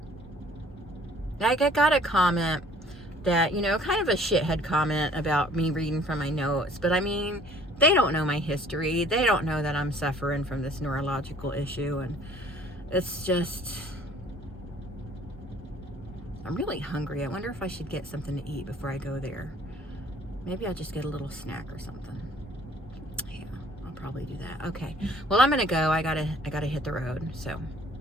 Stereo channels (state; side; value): normal; both; correlation 0.56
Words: I got a comment that, you know, kind of a shithead comment about me reading from my notes, but I mean, they don't know my history. They don't know that I'm suffering from this neurological issue, and it's just, I'm really hungry. I wonder if I should get something to eat before I go there. Maybe I'll just get a little snack or something. Yeah, I'll probably do that. Okay, well, I'm gonna go. I gotta hit the road. So,